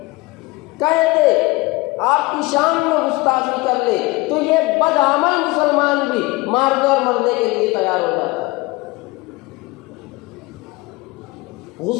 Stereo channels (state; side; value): quieter; right; 22.7 dB